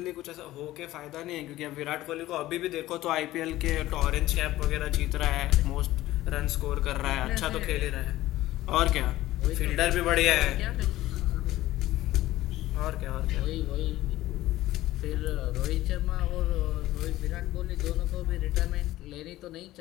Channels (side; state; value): right; quieter; 15.9 dB